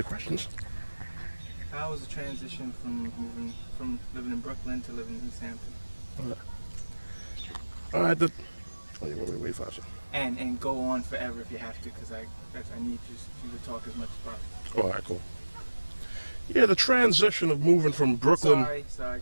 questions. How was the transition from moving from living in Brooklyn to living in East Hampton? All right. Wait 5 seconds. And go on forever if you have to, because I need you to talk as much as possible. All right, cool. Yeah, the transition of moving from Brooklyn. Sorry,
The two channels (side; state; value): both; inverted; correlation -1.00